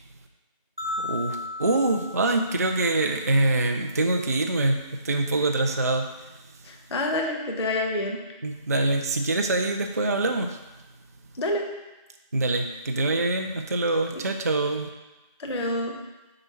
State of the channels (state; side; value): inverted; both; correlation -0.59